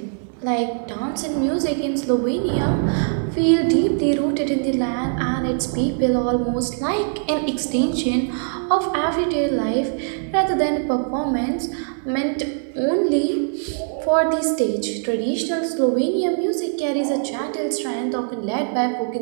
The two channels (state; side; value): silent; left; digital silence